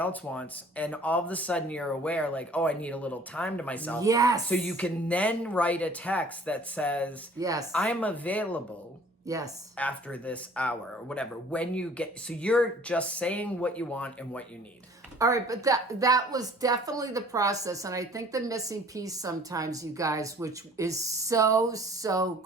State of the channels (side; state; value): both; normal; correlation 0.52